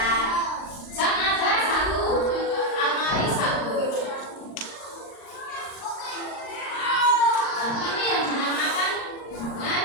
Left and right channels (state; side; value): late; right; 39 ms